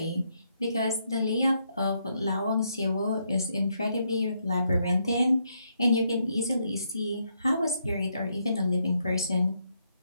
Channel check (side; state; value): both; inverted; correlation -0.77